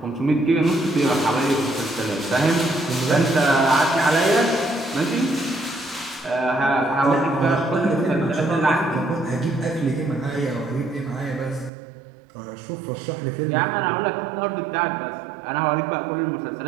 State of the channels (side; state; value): left; drops out; at 11.7 s